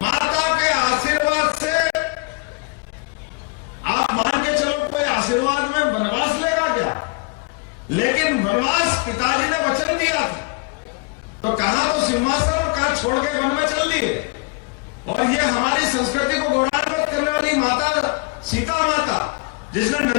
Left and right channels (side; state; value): right; quieter; 31.1 dB